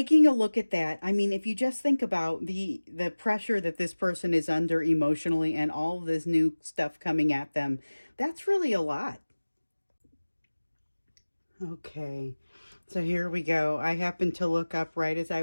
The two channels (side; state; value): both; inverted; correlation -1.00